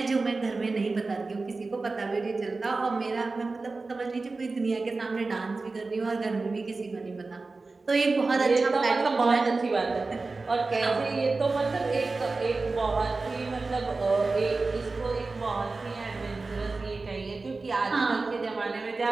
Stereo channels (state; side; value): quieter; left; 3.7 dB